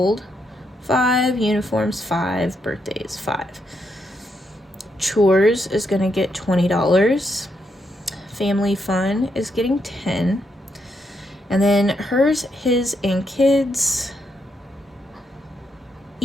$5. Uniforms, $5. Birthdays, $5. Chores is going to get $20. Family fun is getting $10. And then hers, his, and kids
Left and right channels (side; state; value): both; normal; correlation 0.79